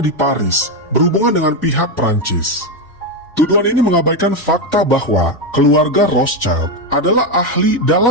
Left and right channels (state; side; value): normal; both; correlation 0.09